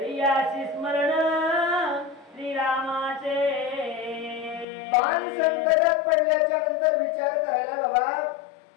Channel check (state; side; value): drops out; right; at 4.7 s